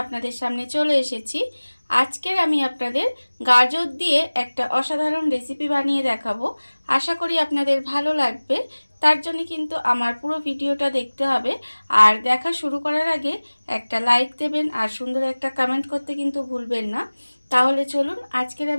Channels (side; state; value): both; inverted; correlation -1.00